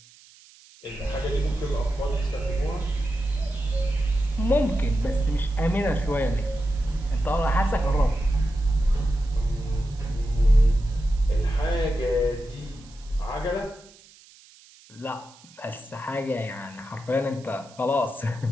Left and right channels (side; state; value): right; noise; hiss, 25 dB below the sound